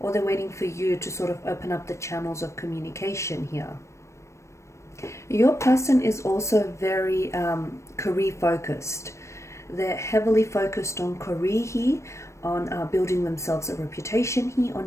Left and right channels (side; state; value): right; late; 0.14 ms